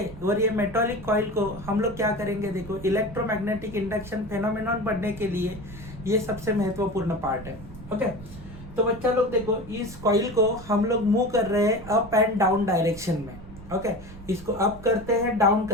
और ये मेटालिक कॉइल को हम लोग क्या करेंगे, देखो इलेक्ट्रोमैग्नेटिक इंडक्शन फेनोमेनॉन पढ़ने के लिए ये सबसे महत्वपूर्ण पार्ट है, ओके। तो बच्चा लोग देखो, इस कॉइल को हम लोग मूव कर रहे हैं अप एंड डाउन डायरेक्शन में, ओके। इसको अप करते हैं, डाउन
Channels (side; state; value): right; noise; rumble, 16 dB below the sound